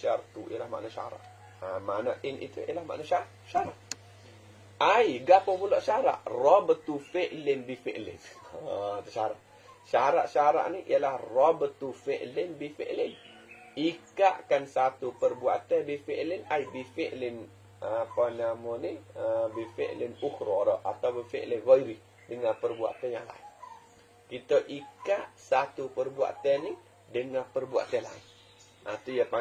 ialah makna syarat. Makna in itu ialah makna syarat. Ai gapo pula syarat? Rabtu fi'lin bi fi'lin. Itu syarat. Syarat ni ialah rabtu fi'lin bi fi'lin. Ikatkan satu perbuatan bi fi'lin, ai bi fi'lin apa nama ni? Bi fi'lin ukhra atau bi fi'lin ghairi, dengan perbuatan yang lain. Kita ikat satu perbuatan ni dengan perbuatan lain. Itu dia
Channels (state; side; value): identical; both; correlation 1.00